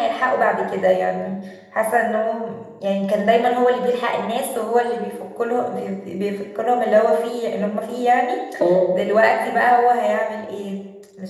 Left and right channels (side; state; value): both; identical; correlation 1.00